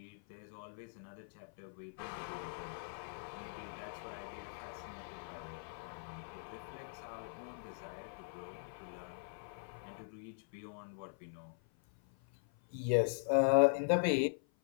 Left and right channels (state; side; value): silent; right; 51 dB below the other